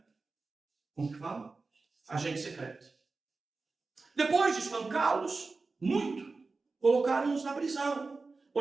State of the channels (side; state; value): left; quieter; 3.9 dB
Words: Como que fala? Agente secreto. Depois de espancá-los, muito, colocaram-os na prisão,